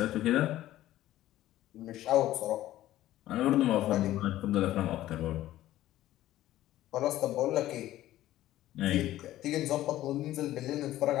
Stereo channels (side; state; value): right; quieter; 14.4 dB